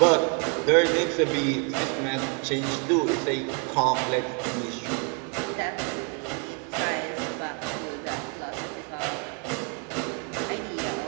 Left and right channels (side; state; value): left; quieter; 37.1 dB